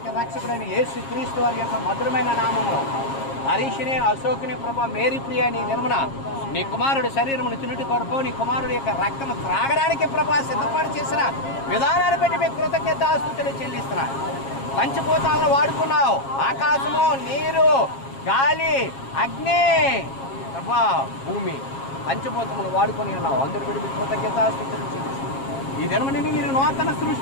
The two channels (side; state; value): right; late; 7.4 ms